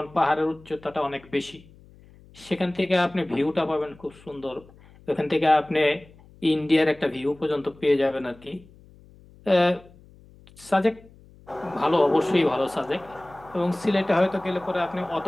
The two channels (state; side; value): noise; left; hum, 25 dB below the sound